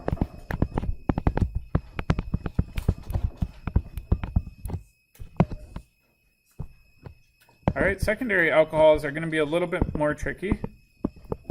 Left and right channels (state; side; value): identical; both; correlation 1.00